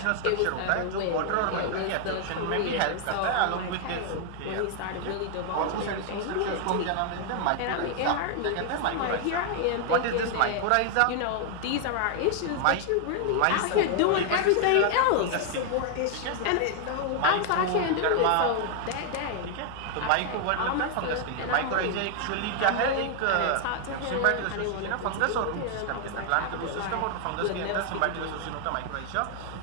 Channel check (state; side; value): different; both; correlation 0.00